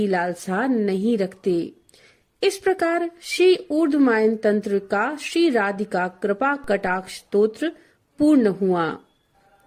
लालसा नहीं रखते। इस प्रकार श्री ऊर्ध्वमायन तंत्र का श्री राधिका कृपा कटाक्ष स्तोत्र पूर्ण हुआ।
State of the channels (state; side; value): identical; both; correlation 1.00